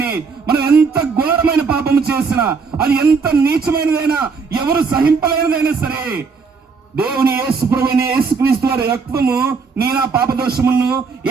మనం ఎంత ఘోరమైన పాపము చేసినా, అది ఎంత నీచమైనదైనా, ఎవరు సహింపలేనిదైనా సరే, దేవుని యేసు ప్రభువైన యేసుక్రీస్తు వారి రక్తము నీ నా పాప దోషములను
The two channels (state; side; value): quieter; left; 5.1 dB